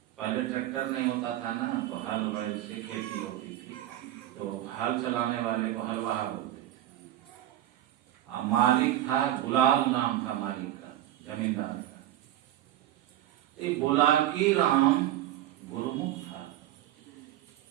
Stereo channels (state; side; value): quieter; left; 13.2 dB